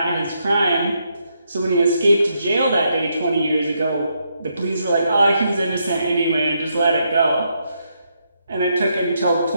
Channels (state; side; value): inverted; both; correlation -0.78